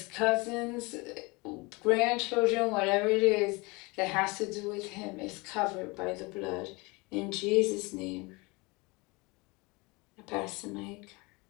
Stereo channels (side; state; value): right; quieter; 25.7 dB